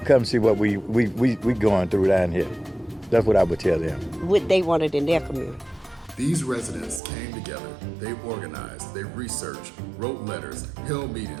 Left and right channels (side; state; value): left; drops out; at 7.0 s